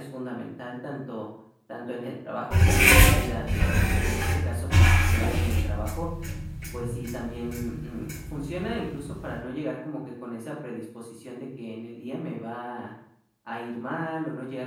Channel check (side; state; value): both; identical; correlation 1.00